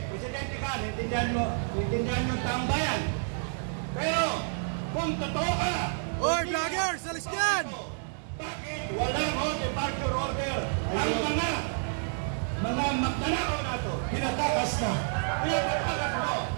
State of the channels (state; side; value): silent; left; digital silence